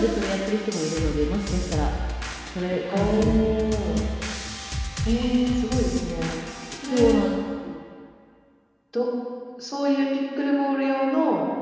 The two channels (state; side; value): identical; both; correlation 1.00